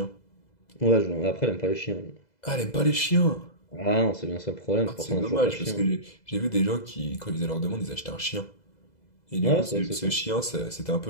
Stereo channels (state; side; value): late; right; 2.0 ms